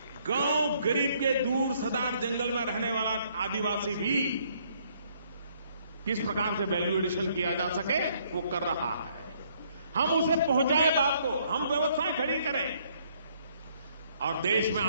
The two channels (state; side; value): inverted; both; correlation -0.66